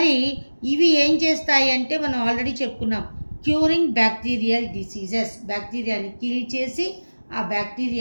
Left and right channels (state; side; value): inverted; both; correlation -1.00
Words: ఇవి ఏం చేస్తాయి అంటే మనం ఆల్రెడీ చెప్పుకున్నాం, క్యూరింగ్ బ్యాక్టీరియల్ డిసీజెస్. బ్యాక్టీరియాని కిల్ చేసి ఆ